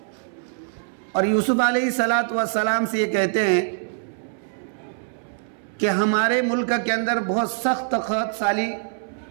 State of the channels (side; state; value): left; silent; 63 dB below the other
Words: اور یوسف علیہ السلام سے یہ کہتے ہیں کہ ہمارے ملک کے اندر بہت سخت قحط سالی